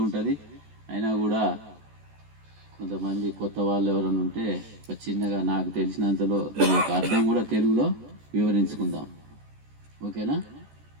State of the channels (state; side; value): late; left; 14 ms